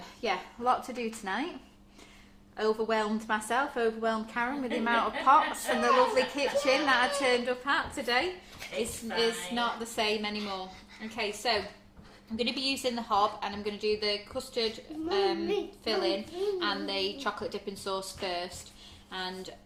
yeah, a lot to do tonight. Overwhelmed Karen with the amount of pots and the lovely kitchen that I turned up at today. It's not the same anymore. Okay, so I'm going to be using the hob, and I'm going to do the custard filling and the chocolate dipping sauce first, and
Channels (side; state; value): both; identical; correlation 1.00